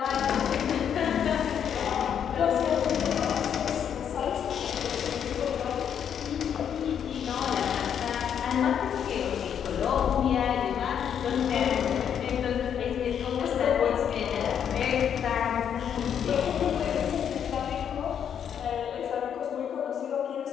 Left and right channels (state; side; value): quieter; right; 8.5 dB